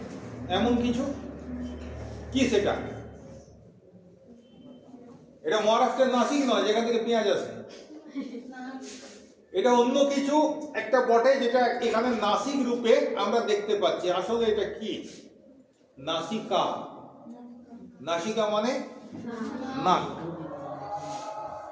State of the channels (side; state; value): both; identical; correlation 1.00